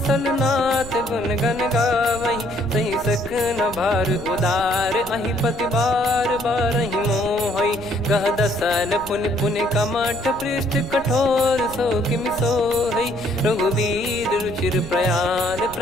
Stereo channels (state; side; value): noise; right; rumble, 15 dB below the sound